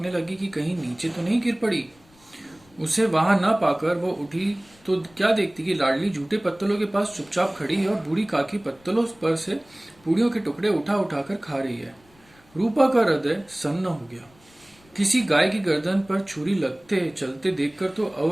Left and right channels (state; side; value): noise; left; rumble, 29 dB below the sound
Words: लगी कि कहीं नीचे तो नहीं गिर पड़ी। उसे वहां न पाकर वो उठी तो क्या देखती कि लाडली जूठे पत्तलों के पास चुपचाप खड़ी है और बूढ़ी काकी पत्तलों पर से पूड़ियों के टुकड़े उठा उठाकर खा रही है। रूपा का हृदय सन्न हो गया। किसी गाय की गर्दन पर छुरी लगते चलते देखकर तो